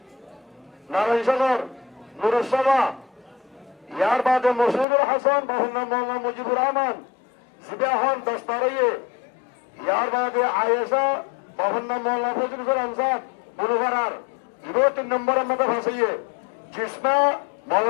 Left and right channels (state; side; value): drops out; right; at 4.9 s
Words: নারায়ণ সাগর নুরুস সাবা ইয়ার বাদে মসুদুল হাসান বাবার নাম মৌলানা মুজিবুর রহমান সিবাহন দস্তারাইয়ে ইয়ার বাদে আয়েশা বাবার নাম মৌলানা ফজলুল ইসলাম সাহেব বুলুভারার 3 নম্বরের মধ্যে ফাঁসিয়ে জিসমা